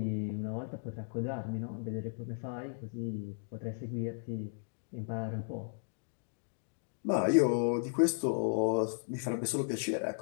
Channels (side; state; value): right; silent; digital silence